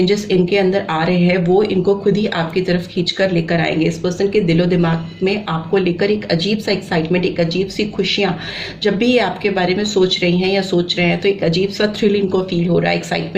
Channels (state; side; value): identical; both; correlation 1.00